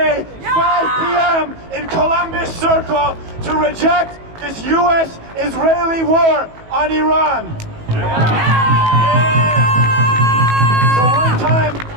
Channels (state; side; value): late; left; 18 ms